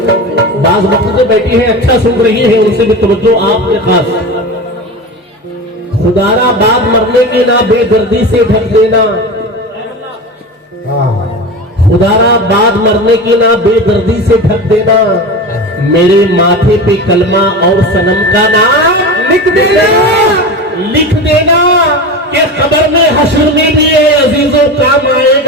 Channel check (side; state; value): both; normal; correlation 0.27